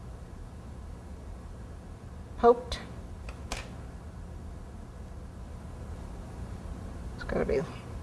poked. It's got to be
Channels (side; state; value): both; identical; correlation 1.00